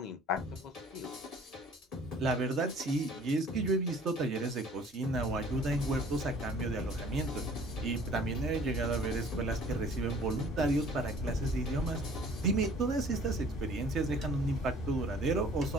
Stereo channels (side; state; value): both; normal; correlation 0.52